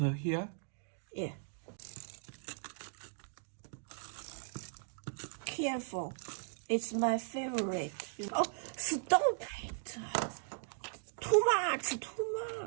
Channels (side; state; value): left; silent; digital silence